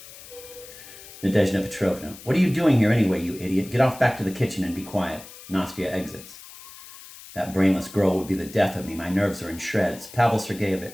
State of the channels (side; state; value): left; noise; hiss, 17 dB below the sound